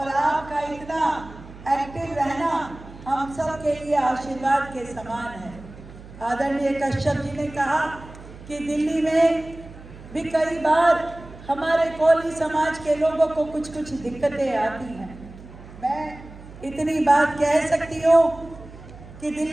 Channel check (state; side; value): noise; right; hum, 17 dB below the sound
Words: आपका इतना एक्टिव रहना हम सब के लिए आशीर्वाद के समान है। आदरणीय कश्यप जी ने कहा कि दिल्ली में भी कई बार हमारे कोली समाज के लोगों को कुछ दिक्कतें आती हैं। मैं इतनी बात कह सकती हूँ कि